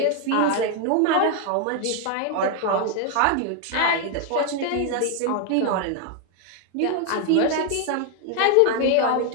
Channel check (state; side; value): different; both; correlation 0.01